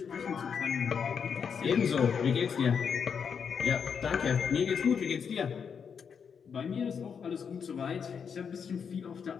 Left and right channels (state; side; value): quieter; right; 6.7 dB